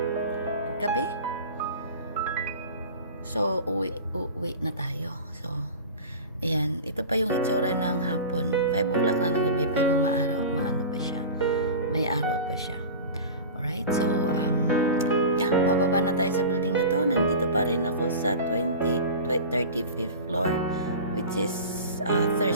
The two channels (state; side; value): inverted; both; correlation -0.33